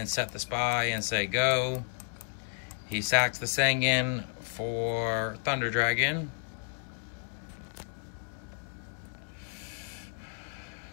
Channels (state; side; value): silent; right; digital silence